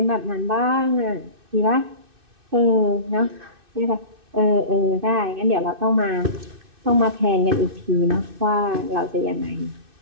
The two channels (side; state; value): left; late; 2.6 ms